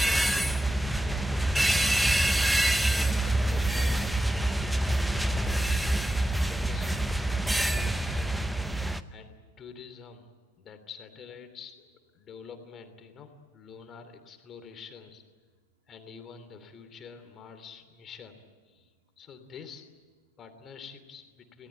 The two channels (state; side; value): normal; both; correlation 0.93